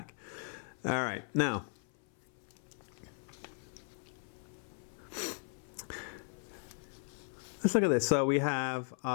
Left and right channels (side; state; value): right; silent; 53 dB below the other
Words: All right, now, let's look at this. So we have